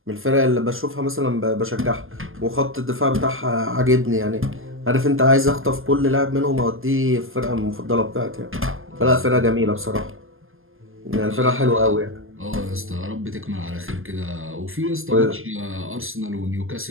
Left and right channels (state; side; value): late; left; 0.59 ms